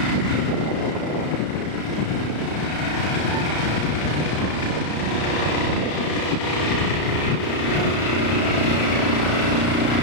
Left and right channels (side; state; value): right; late; 33 ms